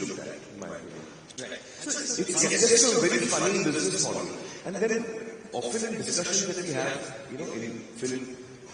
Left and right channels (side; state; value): both; identical; correlation 1.00